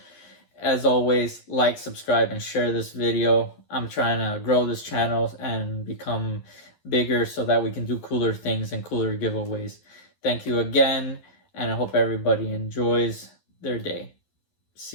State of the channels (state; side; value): late; right; 11 ms